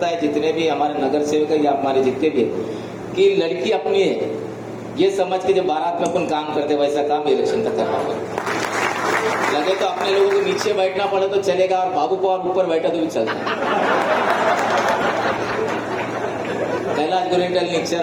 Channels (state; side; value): identical; both; correlation 1.00